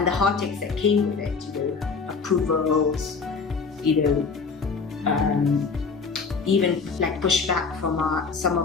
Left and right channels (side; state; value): right; quieter; 5.0 dB